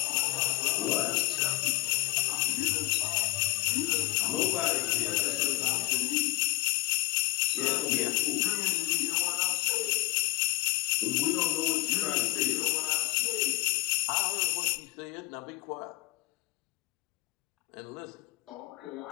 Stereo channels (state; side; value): quieter; right; 23.3 dB